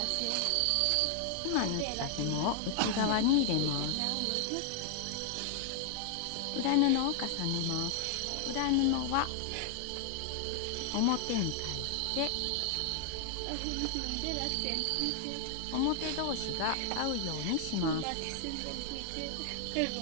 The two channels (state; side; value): different; both; correlation 0.00